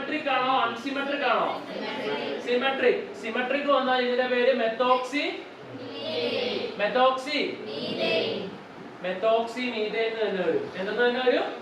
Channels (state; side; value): identical; both; correlation 1.00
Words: ആണോ അൺസിമെട്രിക് ആണോ? സിമെട്രിക്. സിമെട്രിക് വന്നാൽ ഇതിന്റെ പേര് മെത്തോക്സി മീഥൈൻ തന്നെ വരും. എന്തെന്ന് തന്നെ വരും?